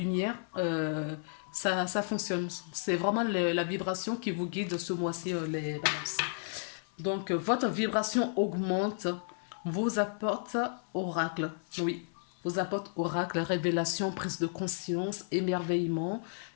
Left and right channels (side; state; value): right; silent; 56 dB below the other